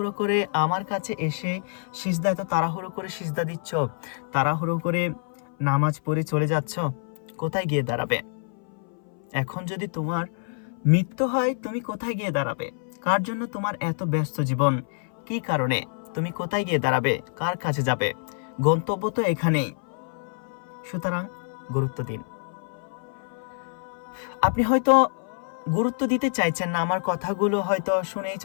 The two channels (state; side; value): silent; right; 59 dB below the other